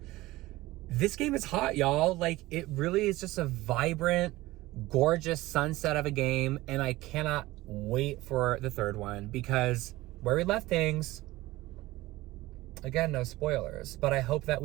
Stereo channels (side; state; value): left; quieter; 18.6 dB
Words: this game is hot, y'all. Like it really is just a vibrant, gorgeous sunset of a game, and I cannot wait for the third one, because where we left things, again, no spoilers, but I hope that